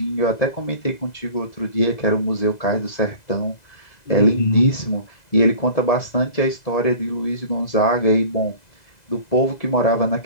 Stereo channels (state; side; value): late; right; 2.0 ms